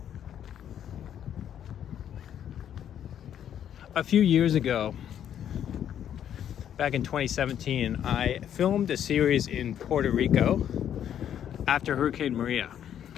A few years ago, back in 2017, I filmed a series in Puerto Rico after Hurricane Maria.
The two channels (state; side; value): quieter; right; 9.8 dB